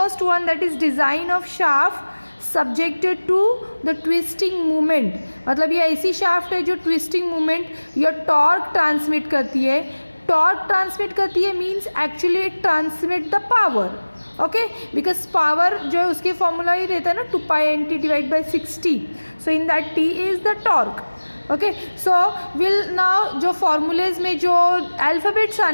one, that is design of shaft subjected to the twisting movement. मतलब ये ऐसी shaft है जो twisting movement या टॉर्क ट्रांसमिट करती है. टॉर्क ट्रांसमिट करती है means actually it transmit the power. Okay, because power जो है उसके फॉर्मूला ही रहता है ना 2π/nt divide by 60. So in that t is the torque. Okay, so will now जो फॉर्मूलेज में जो अल्फ़ाबेट्स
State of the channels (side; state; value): both; inverted; correlation -1.00